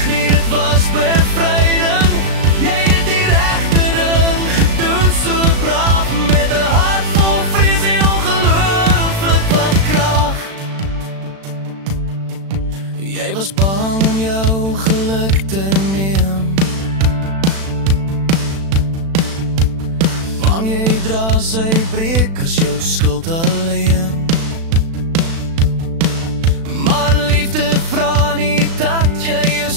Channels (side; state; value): left; late; 36 ms